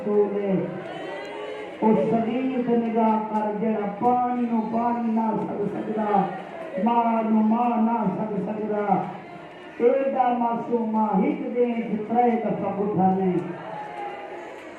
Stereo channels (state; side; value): identical; both; correlation 1.00